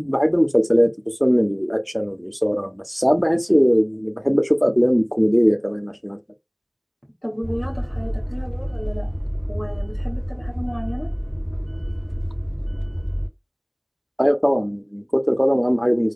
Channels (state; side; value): identical; both; correlation 1.00